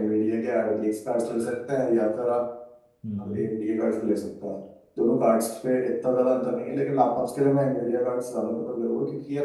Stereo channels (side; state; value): both; identical; correlation 1.00